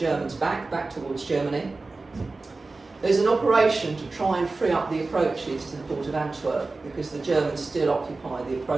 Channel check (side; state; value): left; quieter; 3.5 dB